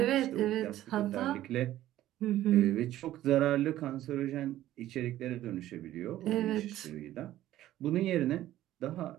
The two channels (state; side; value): quieter; left; 13.8 dB